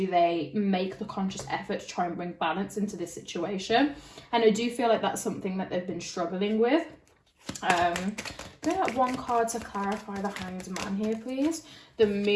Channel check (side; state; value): both; identical; correlation 1.00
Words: they make the conscious effort to try and bring balance into this situation? And I do feel like that's something that they've been struggling with. Bring up one card to clarify the Hanged Man here, please. The